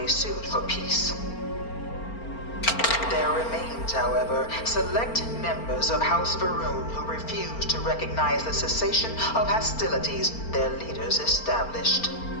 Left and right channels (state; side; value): late; right; 4.4 ms